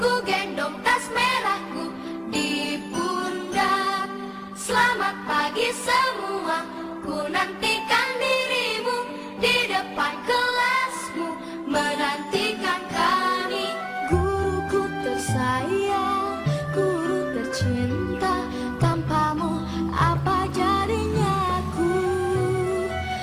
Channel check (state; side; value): identical; both; correlation 1.00